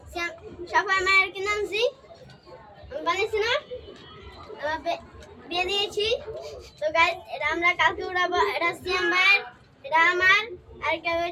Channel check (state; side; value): identical; both; correlation 1.00